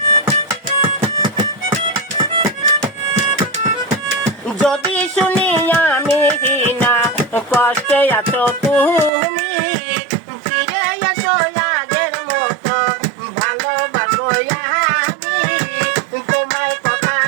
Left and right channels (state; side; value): drops out; left; at 9.1 s